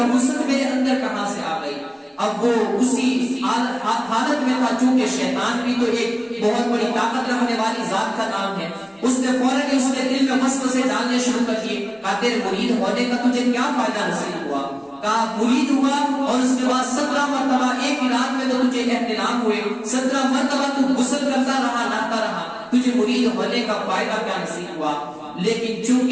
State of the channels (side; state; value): both; identical; correlation 1.00